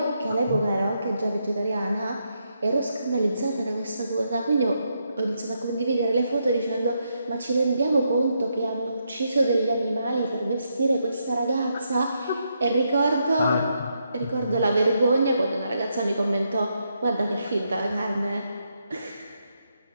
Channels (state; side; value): inverted; both; correlation -0.80